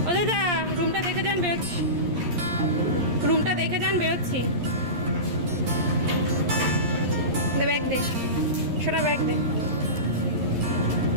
ও দাদা, রুমটা দেখে যান, বেরোচ্ছি। রুমটা দেখে যান, বেরোচ্ছি। ব্যাগ দে, সোনা ব্যাগ দে।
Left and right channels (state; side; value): late; left; 11 ms